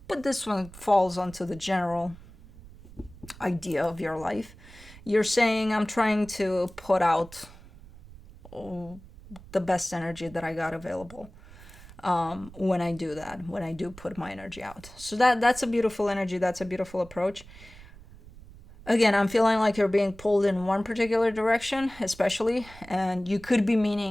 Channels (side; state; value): right; noise; rumble, 19 dB below the sound